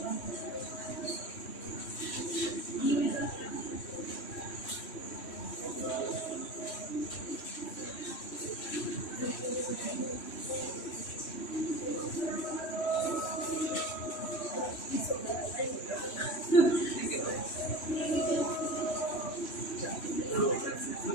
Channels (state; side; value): late; right; 3.1 ms